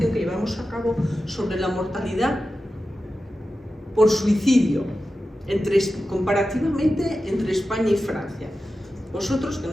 que llevamos a cabo sobre la mortalidad por suicidio comparativamente entre España y Francia. Vosotros, que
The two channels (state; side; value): normal; both; correlation 0.93